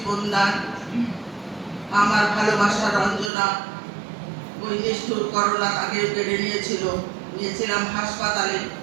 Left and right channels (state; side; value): drops out; left; at 3.3 s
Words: দান। আমার ভালোবাসা রঞ্জনা ওই নিষ্ঠুর করোনা তাকে কেড়ে নিয়েছিলাম হাসপাতালে,